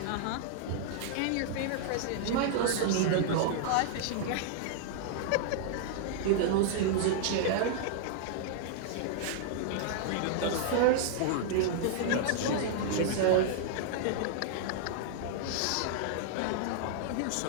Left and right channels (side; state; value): both; different; correlation -0.01